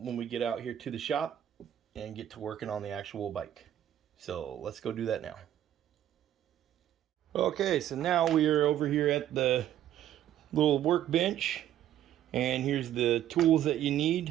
we get out here to the shop and get to working on the actual bike. So let's go do that now. Okay, so now we are over here at the little workbench, and here's the tools that you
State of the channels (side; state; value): left; quieter; 11.7 dB